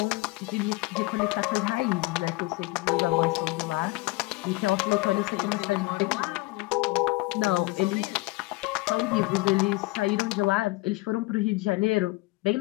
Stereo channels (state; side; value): quieter; right; 22.8 dB